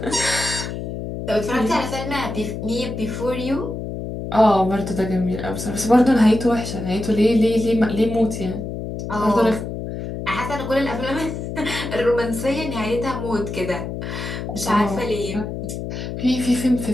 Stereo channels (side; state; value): left; noise; hum, 6 dB below the sound